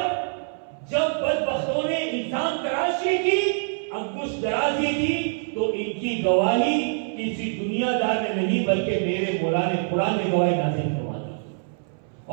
جب بدبختوں نے الزام تراشی کی, انگشت درازی کی, تو ان کی گواہی کسی دنیا دار نے نہیں بلکہ میرے مولا نے قرآن میں گواہی نازل کروا دی.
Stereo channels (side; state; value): left; silent; 62 dB below the other